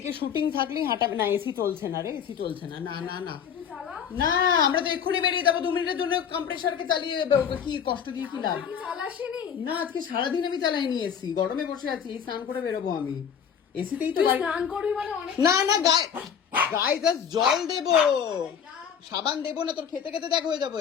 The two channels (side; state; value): right; quieter; 7.7 dB